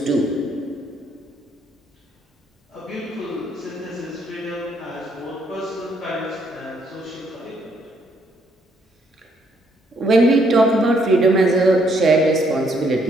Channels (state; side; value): normal; both; correlation 0.70